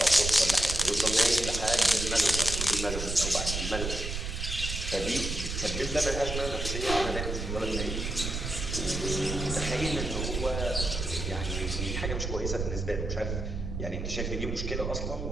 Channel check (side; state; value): right; noise; rumble, 4 dB below the sound